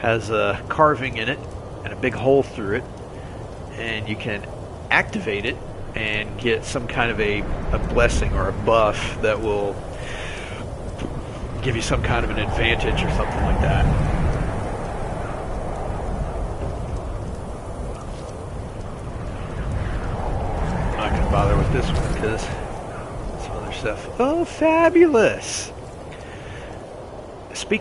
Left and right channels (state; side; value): identical; both; correlation 1.00